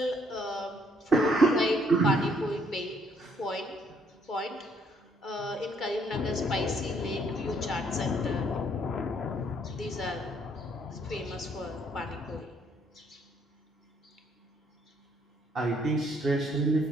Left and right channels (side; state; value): both; normal; correlation 0.67